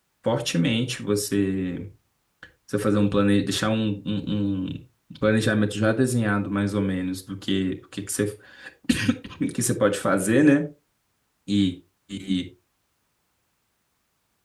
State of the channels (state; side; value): identical; both; correlation 1.00